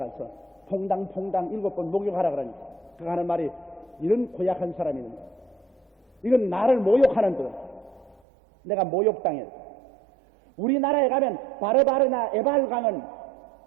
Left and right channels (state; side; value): drops out; left; at 8.2 s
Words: 퐁당퐁당 7번 목욕하라 그러니까 그 하는 말이 이런 고약한 사람이 있는 거야. 이건 나를 모욕하는 거야. 내가 모욕당했다. 우리나라에 가면 바르바르나 에발강은